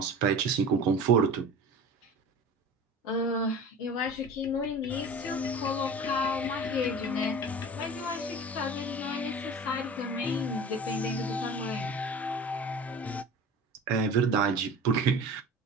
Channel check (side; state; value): both; normal; correlation 0.37